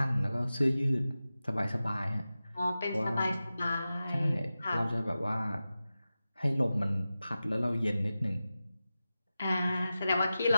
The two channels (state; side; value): inverted; both; correlation -0.94